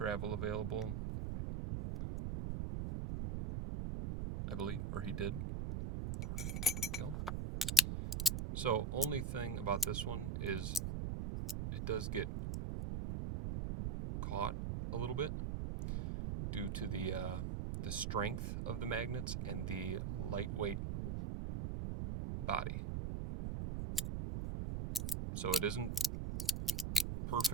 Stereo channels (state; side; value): noise; right; rumble, 2 dB below the sound